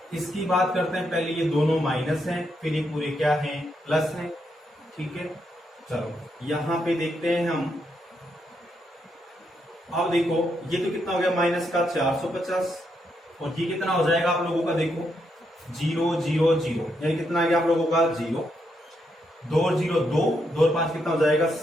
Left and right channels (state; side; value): normal; both; correlation 0.79